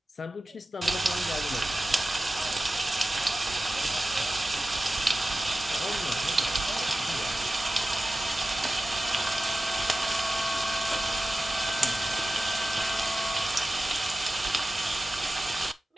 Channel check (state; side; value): normal; both; correlation 0.95